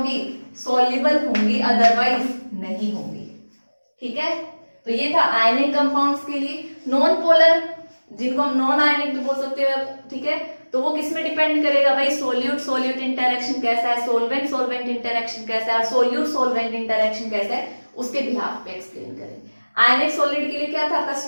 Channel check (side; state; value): both; inverted; correlation -1.00